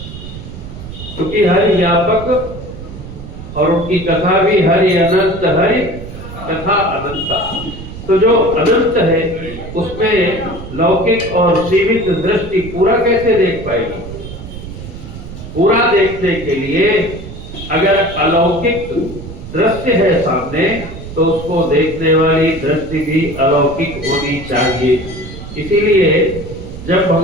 क्योंकि हरि व्यापक और उनकी कथा भी हरि अनंत, हरि कथा अनंता। तो जो अनंत है उसमें लौकिक और सीमित दृष्टि पूरा कैसे देख पाएगी? पूरा देखने के लिए अगर अलौकिक दृश्य है सामने तो उसको देखने वाली दृष्टि भी अलौकिक होनी चाहिए। इसीलिए जब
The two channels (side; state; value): right; noise; rumble, 12 dB below the sound